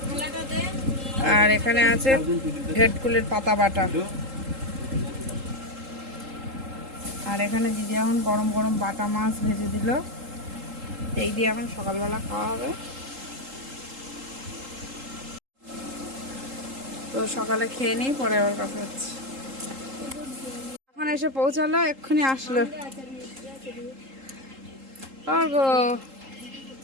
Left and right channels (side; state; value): left; late; 3.8 ms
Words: আর এখানে আছে ভেটকুলের পাতা বাটা। আর এখানে দিদি এখন গরম গরম বাটা মাছ ভেজে দিল। এই দিয়ে এখন সকালবেলা খাওয়া হবে। তো সকালে খেয়ে নিই, পরে আবার কথা হচ্ছে। এখন এসে পৌঁছালো, এক্ষুনি আসলো। গো